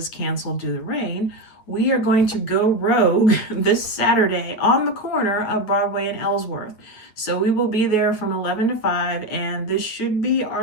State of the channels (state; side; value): late; right; 9.1 ms